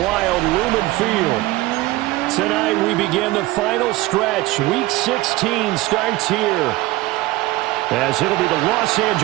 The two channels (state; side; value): quieter; left; 18.6 dB